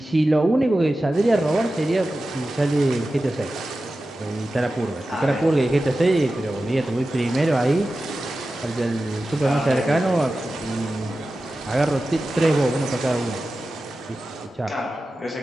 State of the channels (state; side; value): normal; both; correlation 0.94